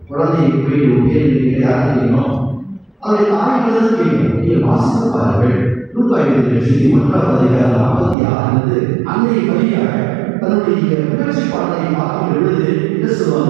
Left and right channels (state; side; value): drops out; left; at 8.2 s